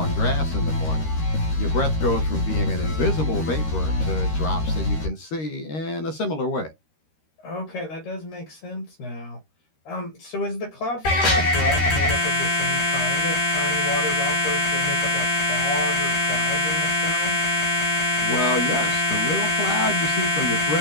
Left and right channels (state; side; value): late; right; 13 ms